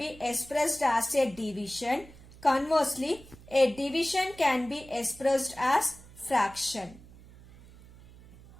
expressed as a division. Conversely, a division can be expressed as fraction.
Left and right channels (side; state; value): right; noise; hum, 21 dB below the sound